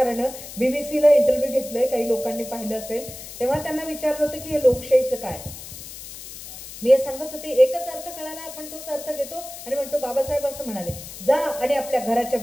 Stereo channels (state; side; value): noise; left; hiss, 13 dB below the sound